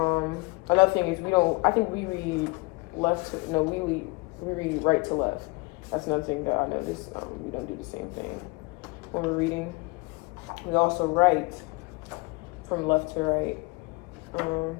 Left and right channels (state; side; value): quieter; right; 26.5 dB